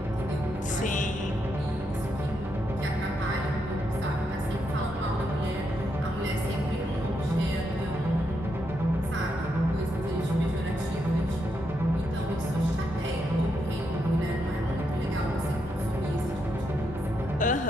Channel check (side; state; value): both; normal; correlation 0.81